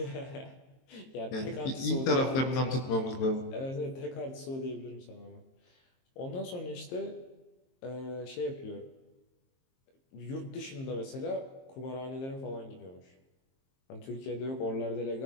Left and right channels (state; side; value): late; right; 22 ms